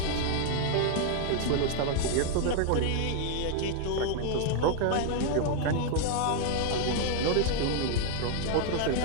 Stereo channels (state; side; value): different; both; correlation 0.00